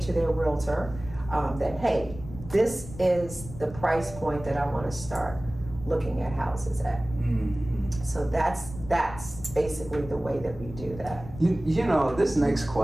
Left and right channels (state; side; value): noise; left; rumble, 14 dB below the sound